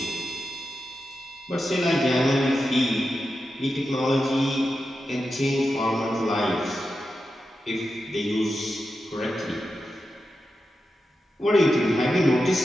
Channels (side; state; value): both; normal; correlation 0.90